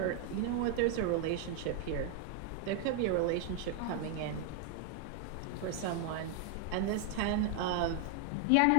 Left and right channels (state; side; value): different; both; correlation 0.00